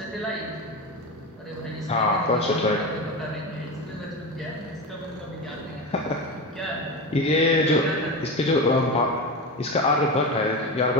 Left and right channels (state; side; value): normal; both; correlation 0.21